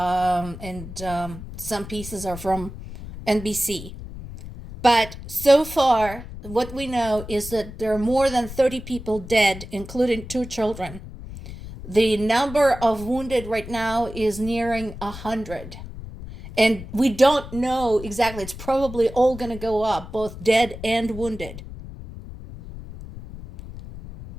some pieces are from NBC. But so far, what we know is that there are more than 30 people dead, including 2 children. The number of wounded right now is nearing 100. And we don't know exactly. It's probably all going to go up, both dead and wounded.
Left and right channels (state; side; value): noise; left; rumble, 12 dB below the sound